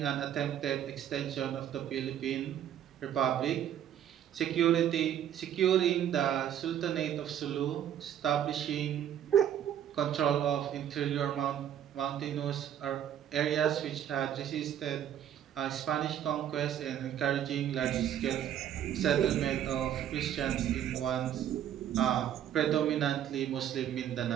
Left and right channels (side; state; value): left; quieter; 10.3 dB